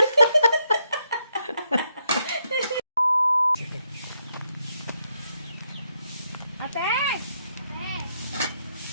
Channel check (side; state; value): both; inverted; correlation -0.78